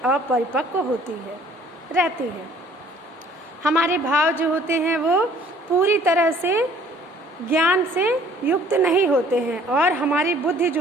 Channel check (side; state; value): both; normal; correlation 0.56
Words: अपरिपक्व रहती है। हमारे भाव जो होते हैं वो पूरी तरह से ज्ञान से युक्त नहीं होते हैं और हमारी बुद्धि